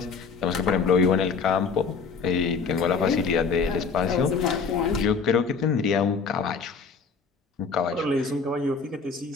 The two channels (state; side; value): quieter; right; 5.2 dB